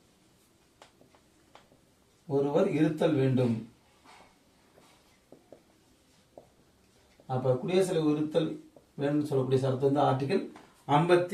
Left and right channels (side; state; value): both; identical; correlation 1.00